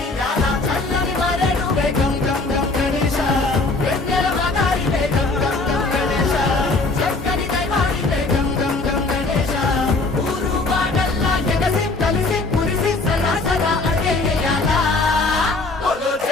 చల్లని మరెడువే గం గం గం గణేశ వెన్నెల మగారివే గం గం గం గణేశ చక్కని దైవానివే గం గం గం గణేశ ఊరు వాడల్లా ఎగసి కలిసి కురిసి సలా సలా అడిగేయాల బోలో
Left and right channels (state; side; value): quieter; right; 3.4 dB